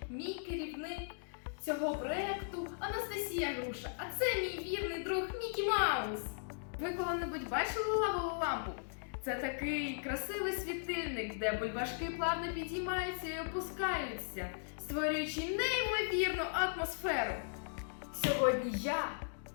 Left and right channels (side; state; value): right; silent; digital silence